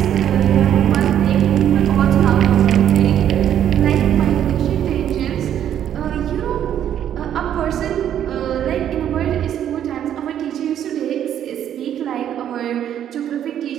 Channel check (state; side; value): quieter; left; 10.2 dB